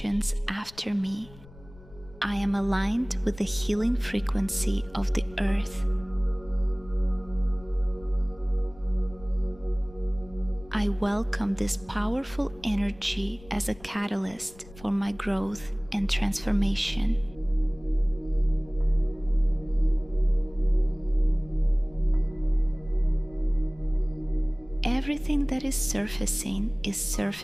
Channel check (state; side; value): noise; left; rumble, 21 dB below the sound